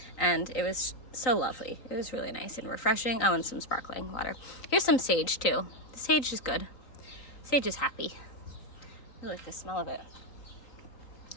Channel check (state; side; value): late; right; 4.0 ms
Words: and it was so lovely. It was really nice and refreshing. Oh, and some sparkling water. Here's some sage too. The sage is good. Sage is happy. I like the smell of it.